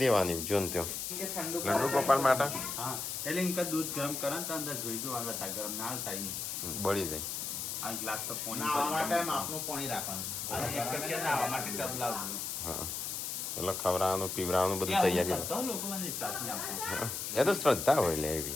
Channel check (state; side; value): noise; left; hiss, 4 dB below the sound